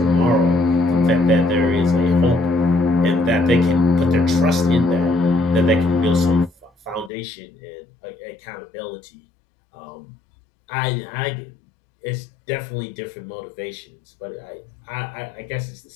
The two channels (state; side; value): drops out; right; at 7.1 s